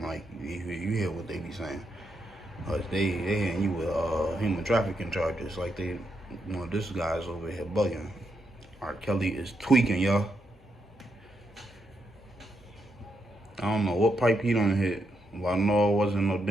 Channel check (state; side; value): normal; both; correlation 0.81